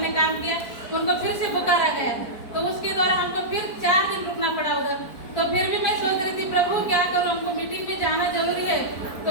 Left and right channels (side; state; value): right; late; 4.5 ms